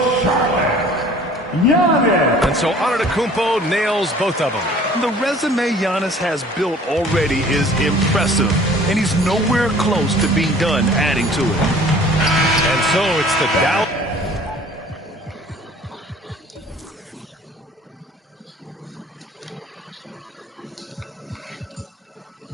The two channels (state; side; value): normal; both; correlation 0.50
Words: Charlotte, Giannis. And so Antetokounmpo nails both of them. The resume Giannis has built already is impressive, and he's nowhere close to being done adding to it. And so it's the Dallas.